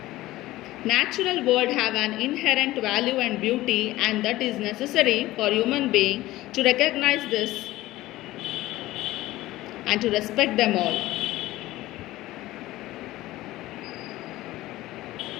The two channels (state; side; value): quieter; right; 17.0 dB